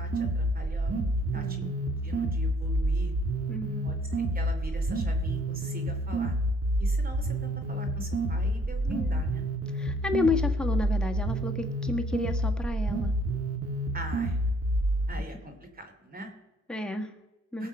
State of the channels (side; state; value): both; normal; correlation 0.62